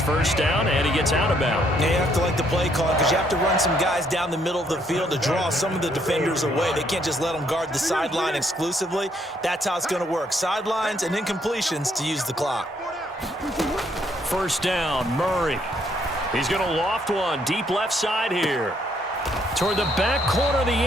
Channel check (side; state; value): both; normal; correlation 0.70